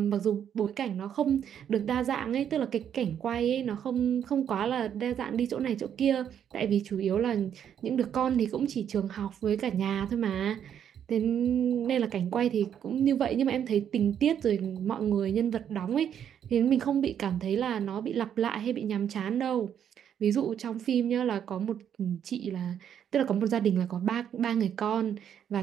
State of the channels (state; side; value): quieter; left; 9.0 dB